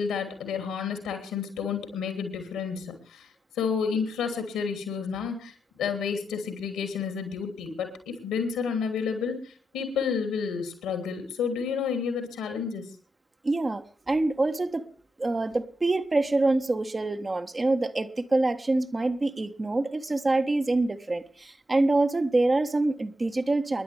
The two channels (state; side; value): normal; both; correlation 0.85